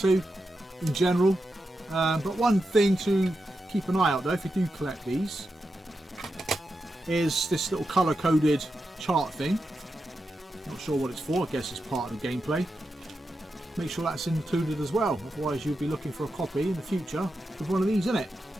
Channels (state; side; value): normal; both; correlation 0.88